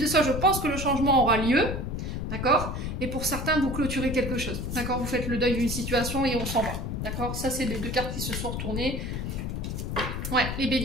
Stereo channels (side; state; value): left; noise; rumble, 3 dB below the sound